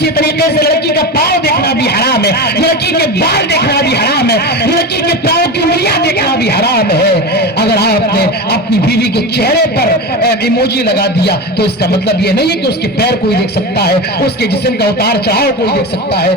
طریقے سے لڑکی کا پاؤں دیکھنا بھی حرام ہے، لڑکی کے بال دیکھنا بھی حرام ہے، لڑکی کے پاؤں کی انگلیاں دیکھنا بھی حرام ہے۔ اگر آپ نے اپنی بیوی کے چہرے پر ایموجی لگا دیا تو اس کا مطلب یہ نہیں ہے کہ اس کے پیر کوئی دیکھ سکتا ہے، اس کے جسم کا اتار چڑھاؤ کوئی دیکھ سکتا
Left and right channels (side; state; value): both; normal; correlation 0.23